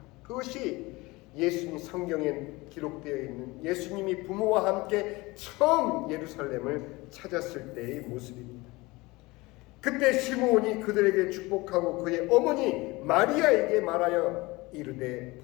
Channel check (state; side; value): quieter; right; 22.4 dB